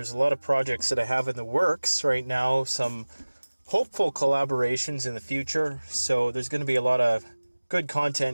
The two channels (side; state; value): both; inverted; correlation -1.00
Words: a lot of projects that I have in the works right now, some hopeful collaborations in the future. So there's going to be a lot of good